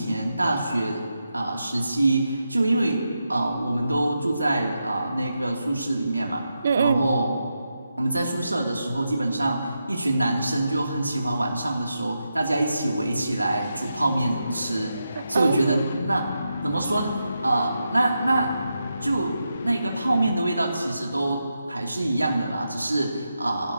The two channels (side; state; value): both; inverted; correlation -0.86